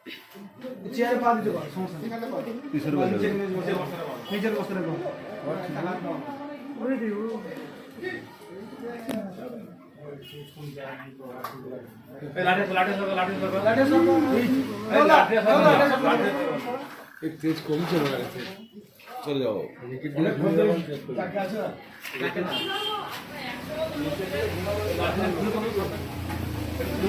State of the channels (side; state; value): both; identical; correlation 1.00